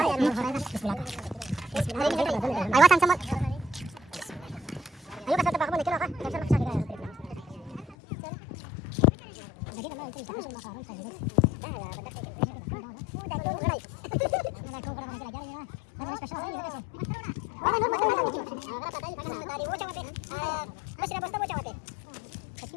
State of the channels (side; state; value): right; drops out; at 8.0 s